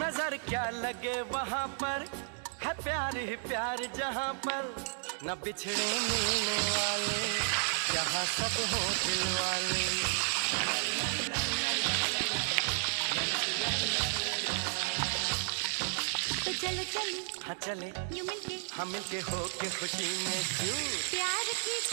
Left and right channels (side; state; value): left; silent; digital silence